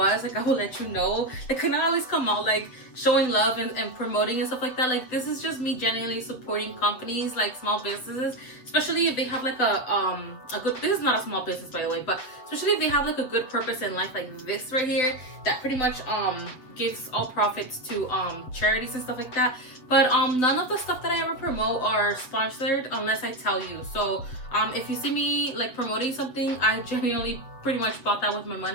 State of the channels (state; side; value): late; right; 7.9 ms